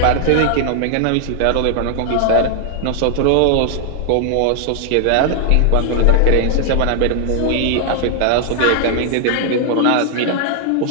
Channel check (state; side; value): different; both; correlation 0.00